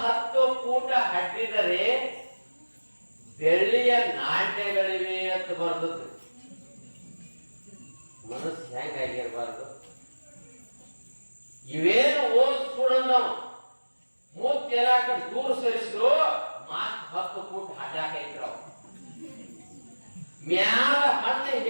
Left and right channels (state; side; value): inverted; both; correlation -1.00